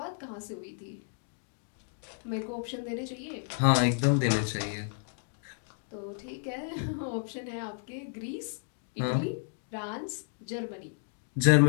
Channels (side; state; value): right; silent; digital silence